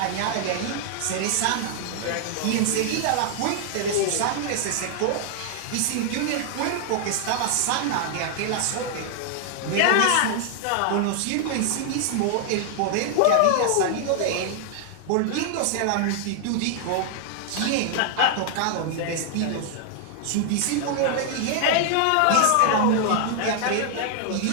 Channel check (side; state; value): both; different; correlation 0.00